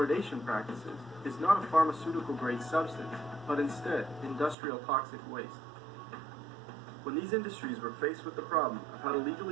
practices is not a pharmaceutical-grade substance, but instead industrial toxic waste. When these industries were faced with the problem of how to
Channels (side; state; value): left; drops out; at 4.5 s